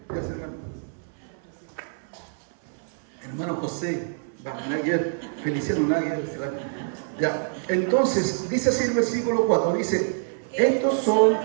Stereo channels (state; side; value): silent; left; 61 dB below the other